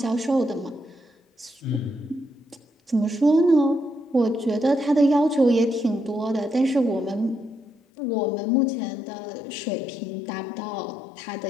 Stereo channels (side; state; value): right; drops out; at 7.8 s